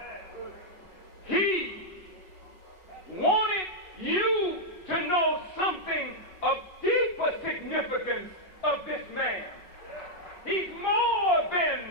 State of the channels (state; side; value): late; right; 5.4 ms